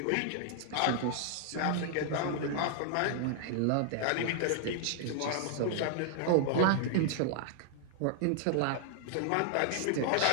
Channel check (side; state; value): both; different; correlation 0.00